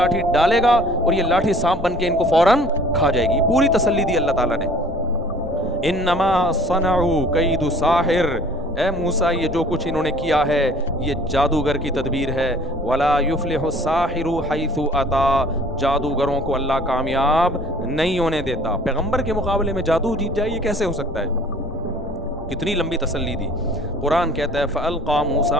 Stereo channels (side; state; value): both; normal; correlation 0.51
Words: ڈالے گا اور یہ لاٹھی سانپ بن کے ان کو فوراً کھا جائے گی. پوری تسلی دی اللہ تعالیٰ نے. انما صنعوا کید ساحر، اے موسیٰ یہ جو کچھ انہوں نے کیا ہے یہ جادوگر کی تدبیر ہے. ولا یفلح الساحر حیث اتا، جادوگروں کو اللہ کامیاب نہیں ہونے دیتا. پیغمبر کے مقابلے میں جادو جیت جائے، یہ کیسے ہو سکتا ہے؟ کتنی لمبی تسلی دی. قرآن کہتا ہے فَأَلْقَى